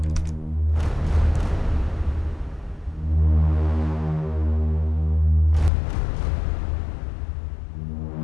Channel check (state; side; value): drops out; right; at 5.7 s